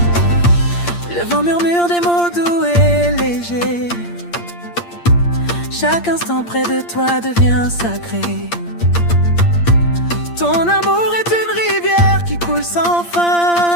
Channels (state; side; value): late; right; 8.6 ms